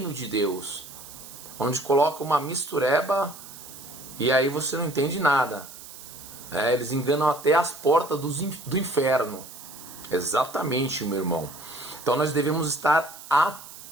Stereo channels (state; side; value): noise; right; hiss, 15 dB below the sound